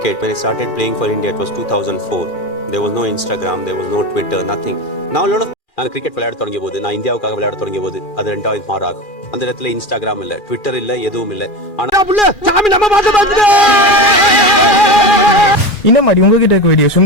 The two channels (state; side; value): late; right; 2.4 ms